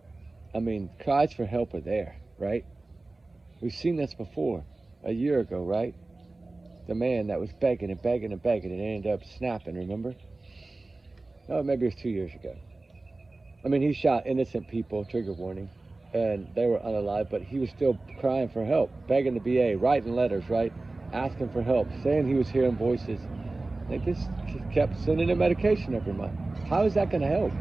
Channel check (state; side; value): quieter; left; 3.2 dB